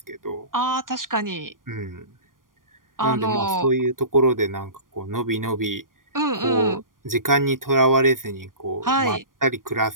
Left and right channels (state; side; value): late; left; 0.90 ms